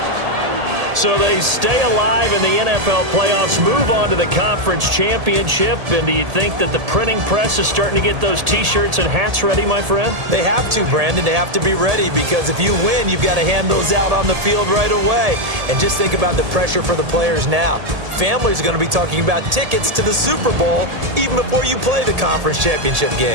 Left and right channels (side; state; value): left; late; 1.8 ms